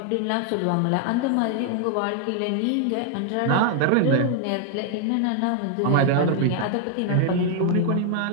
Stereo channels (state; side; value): different; both; correlation 0.00